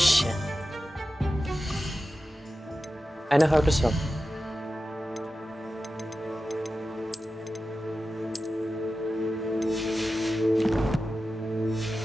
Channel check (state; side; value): normal; both; correlation 0.93